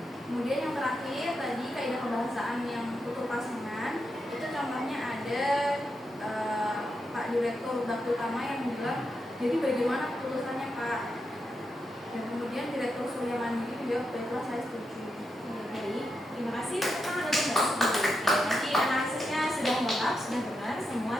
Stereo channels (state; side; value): normal; both; correlation 0.85